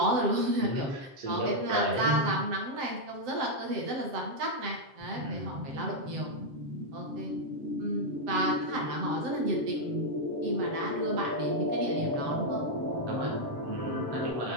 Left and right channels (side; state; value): left; late; 7.7 ms